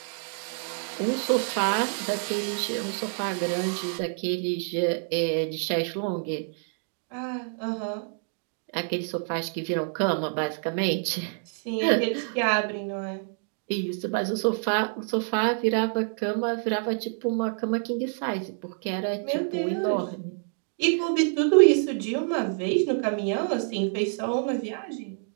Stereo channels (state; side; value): silent; left; 60 dB below the other